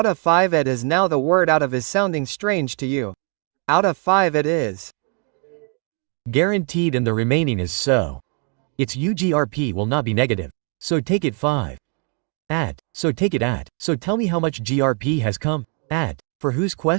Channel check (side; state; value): left; quieter; 39.7 dB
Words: of 5 it is now the word out of is sounding strange to you. Out of 5 it is. Guaranteed and the remaining is so. Its UGRP will not be negative. So take it 5. At. So take it at. So tell me how much GRP has come. At. For whose